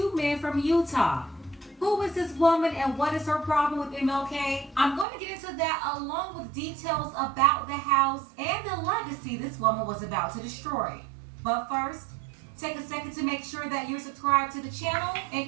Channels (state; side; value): drops out; left; at 5.1 s